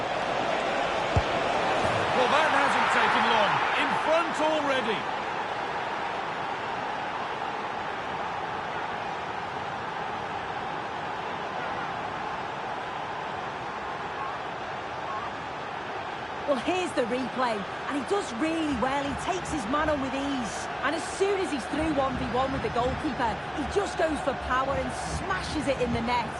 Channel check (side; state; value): both; identical; correlation 1.00